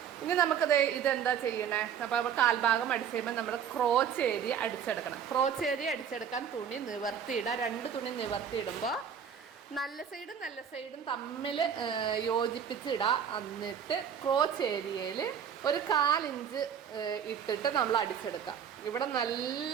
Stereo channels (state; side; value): quieter; left; 8.0 dB